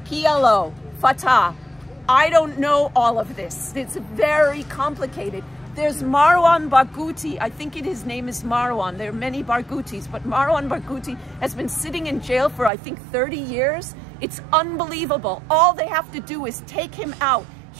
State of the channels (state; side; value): drops out; left; at 12.7 s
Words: PLO, Fatah. I don't know all of this. It's very complicated. There's Marwan Barghouti. I think his name is Marwan. There are many Barghoutis, but Marwan Barghouti has been sitting in jail for, I think, 30 years. It's unbelievable. All they have to do is take him out.